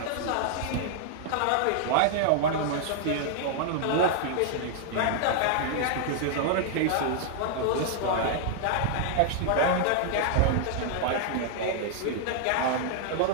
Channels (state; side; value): different; both; correlation -0.01